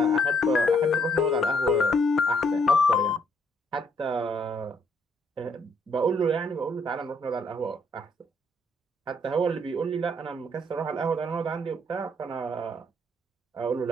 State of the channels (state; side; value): normal; both; correlation 0.69